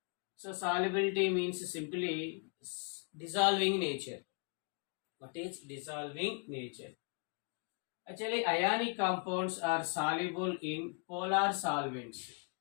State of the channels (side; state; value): right; quieter; 37.3 dB